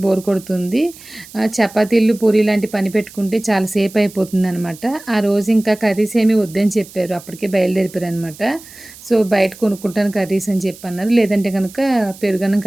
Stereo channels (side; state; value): right; noise; hiss, 19 dB below the sound